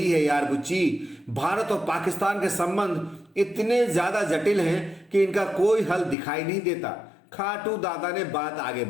है यार बुच्ची, भारत और पाकिस्तान के संबंध इतने ज्यादा जटिल हैं कि इनका कोई हल दिखाई नहीं देता। खाटू दादा ने बात आगे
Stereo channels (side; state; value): right; drops out; at 6.2 s